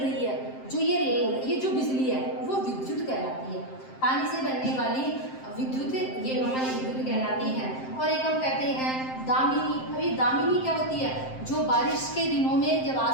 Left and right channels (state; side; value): late; right; 7.7 ms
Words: है, जो ये जो बिजली है वो विद्युत कहलाती है। पानी से बनने वाली विद्युत ये हमारी विद्युत कहलाती है। और एक हम कहते हैं दामिनी। अभी दामिनी क्या होती है? जो बारिश के दिनों में जब